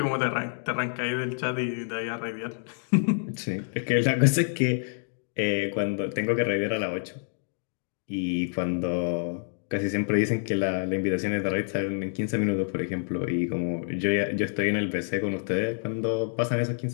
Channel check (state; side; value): silent; right; digital silence